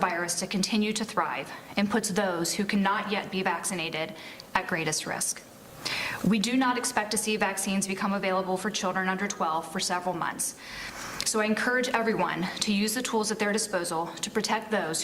to continue to thrive and puts those who cannot yet be vaccinated at greatest risk. We do not expect to see vaccines become available for children under 12 for several months. So I encourage everyone to use the tools at their disposal to protect those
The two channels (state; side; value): identical; both; correlation 1.00